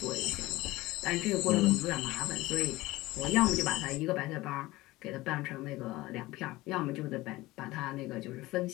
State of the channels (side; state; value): right; quieter; 19.2 dB